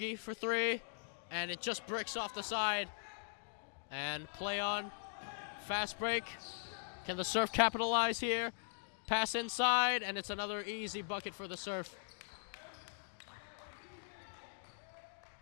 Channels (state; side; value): silent; right; digital silence